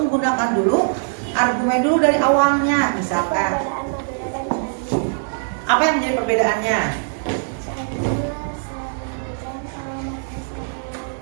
dulu argumen dulu dari awalnya. Misalkan, Perbedaan Madura dan Candi. apa yang menjadi perbedaannya?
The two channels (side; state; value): left; silent; digital silence